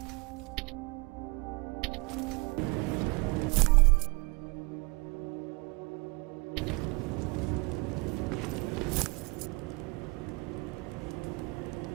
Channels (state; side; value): quieter; left; 28.6 dB